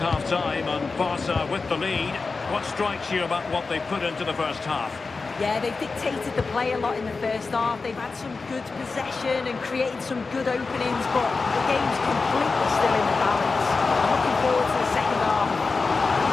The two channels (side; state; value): right; quieter; 4.2 dB